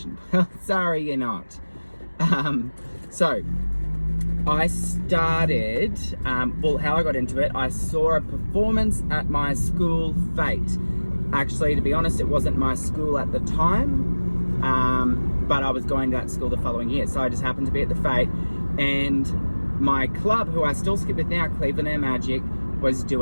Well, sorry, you're not. So I started, how I got into it, I saw a performance at my school fete. Actually, to be honest, it wasn't my school at the time, but I was going to that school the following year. So I just happened to be at the fete, and my club, who I still skip with now, Cleveland Air Magic, was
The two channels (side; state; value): both; inverted; correlation -1.00